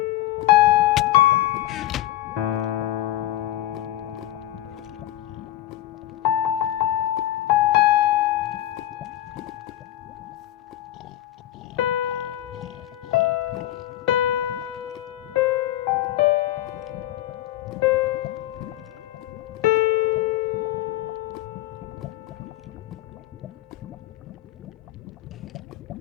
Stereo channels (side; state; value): right; quieter; 14.3 dB